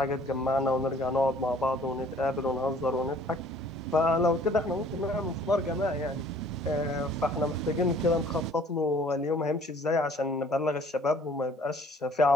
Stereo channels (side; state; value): both; normal; correlation 0.55